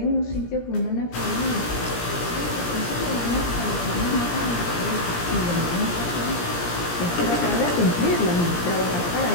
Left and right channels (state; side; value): late; right; 17 ms